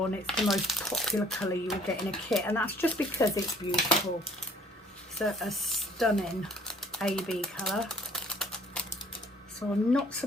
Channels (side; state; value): both; normal; correlation 0.57